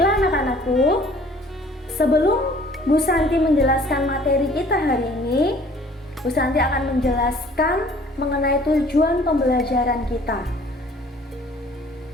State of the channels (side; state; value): both; normal; correlation 0.53